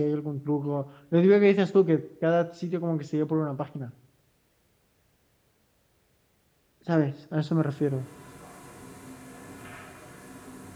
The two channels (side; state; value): both; identical; correlation 1.00